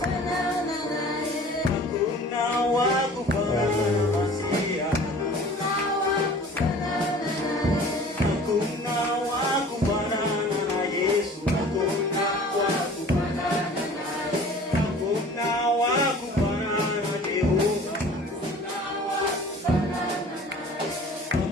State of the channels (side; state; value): both; normal; correlation 0.46